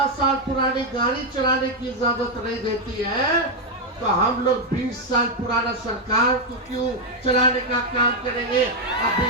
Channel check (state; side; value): normal; both; correlation 0.02